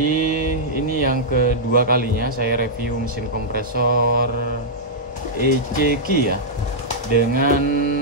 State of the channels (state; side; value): normal; both; correlation -0.09